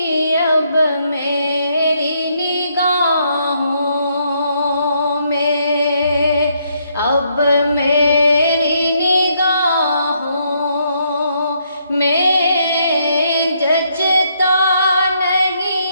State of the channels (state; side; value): inverted; both; correlation -0.73